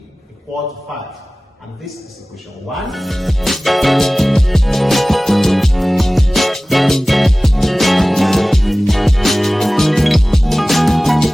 equal to 5. And this is equation 1.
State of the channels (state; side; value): normal; both; correlation 0.97